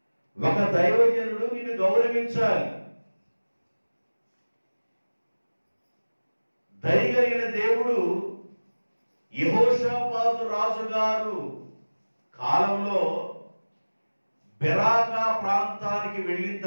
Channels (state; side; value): inverted; both; correlation -1.00